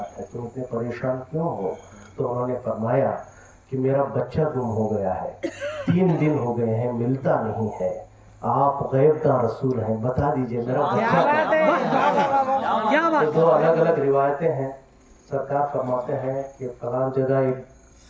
है, तुम इतने परेशान क्यों हो? तो उन्होंने फरमाया कि मेरा बच्चा गुम हो गया है, 3 दिन हो गए हैं, मिलता नहीं है। आप गैबदार रसूल हैं, बता दीजिए मेरा बच्चा। तो 2 अलग अलग रिवायतें हैं। सरकार फरमाते हैं कि फलां जगह एक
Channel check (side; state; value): both; identical; correlation 1.00